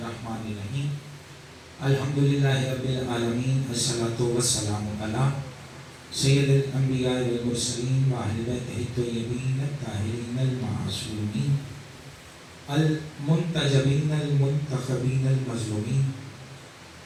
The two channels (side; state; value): both; identical; correlation 1.00